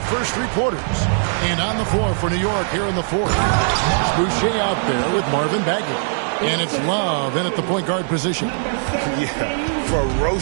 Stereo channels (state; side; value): silent; left; digital silence